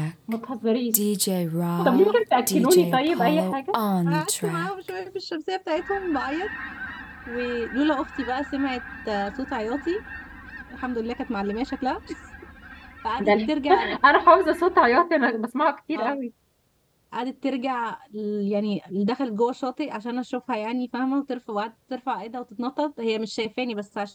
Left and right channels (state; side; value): identical; both; correlation 1.00